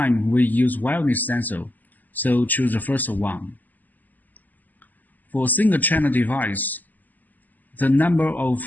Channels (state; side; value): late; right; 0.084 ms